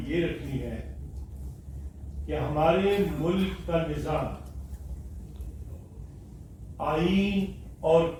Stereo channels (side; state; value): both; identical; correlation 1.00